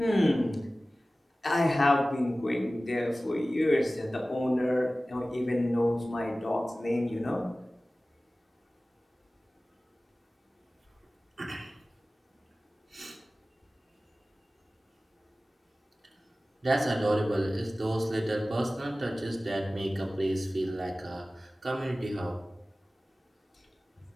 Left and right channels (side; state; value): both; normal; correlation 0.97